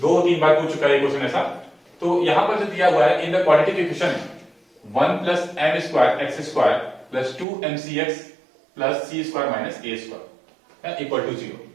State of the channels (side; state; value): left; drops out; at 7.5 s